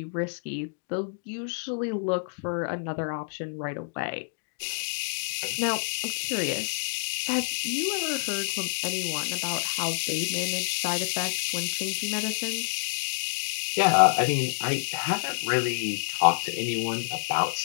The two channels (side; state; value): right; silent; digital silence